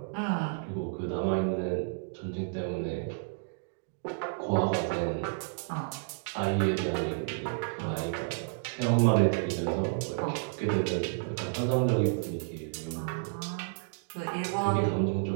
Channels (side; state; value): left; silent; digital silence